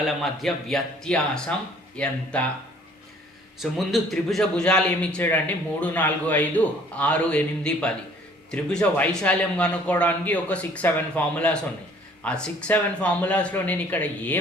మధ్య వ్యత్యాసం ఎంత? సో ముందు త్రిభుజ భుజాలు ఏమి ఇచ్చాడంటే 3, 4, 5, 6, 8, 10. త్రిభుజ వైశాల్యం కనుక్కోవడానికి ఒక 6-7 ఫార్ములాస్ ఉన్నాయి. ఆ 6-7 ఫార్ములాస్లో నేను ఇక్కడ ఏ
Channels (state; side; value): normal; both; correlation 0.56